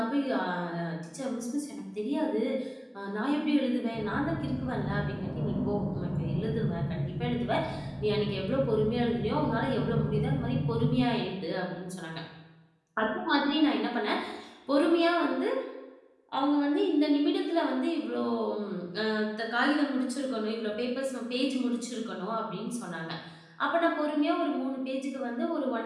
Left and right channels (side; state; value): both; identical; correlation 1.00